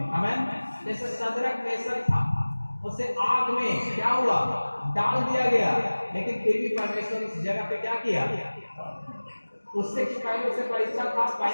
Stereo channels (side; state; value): both; inverted; correlation -1.00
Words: आमीन। जैसे सदरक मेसक था, उसे आग में क्या हुआ? डाल दिया गया, लेकिन फिर भी परमेश्वर उस जगह पे क्या किया? उससे कि पहले उसे परीक्षा था,